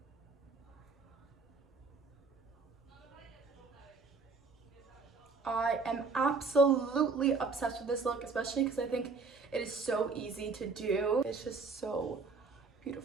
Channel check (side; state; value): left; quieter; 4.4 dB